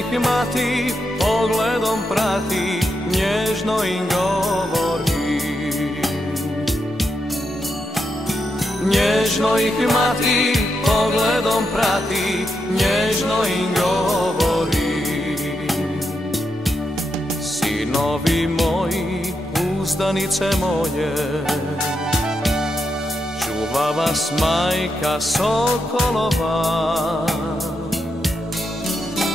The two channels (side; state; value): both; normal; correlation 0.84